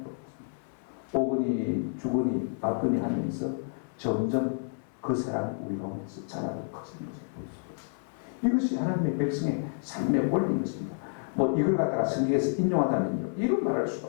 오거니 죽으니 받거니 하면서 점점 그 사람이 우리 가운데서 자라고 커지는 것을 볼 수가 있습니다. 이것이 하나님의 백성의 삶의 원리인 것입니다. 뭐 이걸 갖다가 성경에서 인용하다면요, 이런 말할 수가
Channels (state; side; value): silent; right; 58 dB below the other